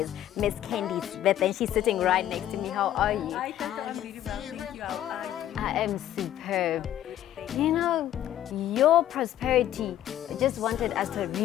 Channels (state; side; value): quieter; right; 12.0 dB